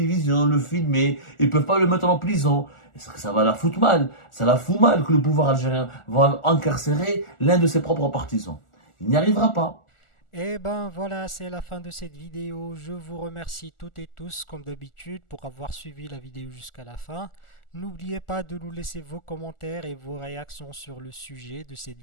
le filmer. Ils peuvent pas le mettre en prison. Ça va la foutre mal. Ça la fout mal que le pouvoir algérien va incarcérer l'un de ses propres partisans. Il n'y arrivera pas. Et ben voilà, c'est la fin de cette vidéo. Je vous remercie toutes et tous, comme d'habitude, pour avoir suivi la vidéo jusqu'à la fin. N'oubliez pas de nous laisser vos commentaires et vos réactions sur le sujet de cette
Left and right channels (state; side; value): late; right; 1.4 ms